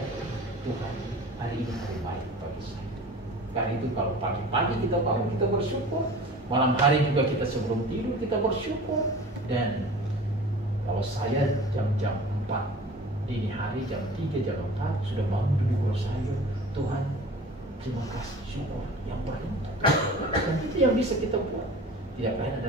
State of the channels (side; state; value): both; normal; correlation 0.41